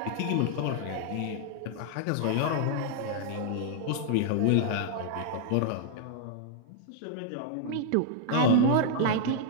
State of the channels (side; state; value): both; different; correlation -0.01